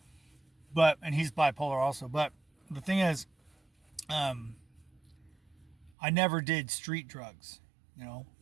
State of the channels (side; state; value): left; drops out; at 5.9 s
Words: And he's bipolar also. But the thing is, um, I never did street drugs. You know,